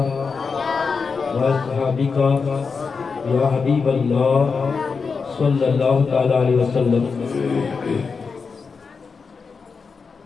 وأصحابك يا حبيب الله صلى الله تعالى عليه وسلم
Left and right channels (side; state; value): right; quieter; 5.1 dB